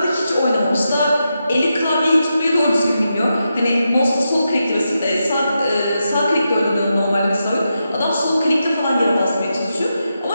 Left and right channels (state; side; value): inverted; both; correlation -0.87